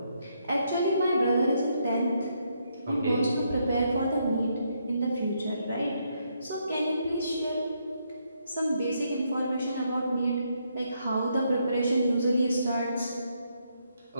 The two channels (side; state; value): both; inverted; correlation -0.76